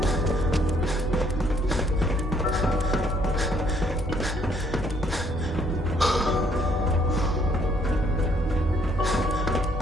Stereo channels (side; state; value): both; normal; correlation 0.67